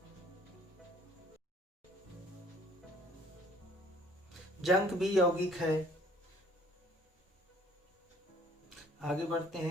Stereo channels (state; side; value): normal; both; correlation 0.57